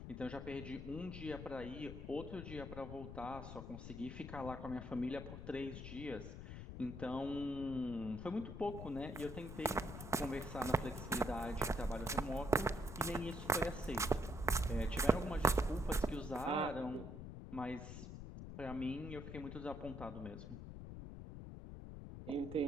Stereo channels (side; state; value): left; noise; rumble, 9 dB below the sound